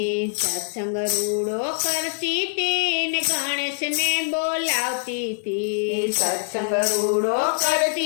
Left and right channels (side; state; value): right; silent; 63 dB below the other